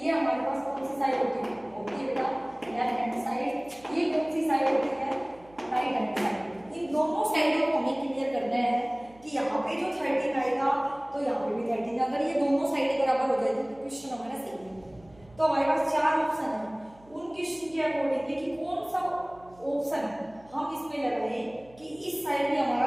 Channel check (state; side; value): noise; right; hum, 26 dB below the sound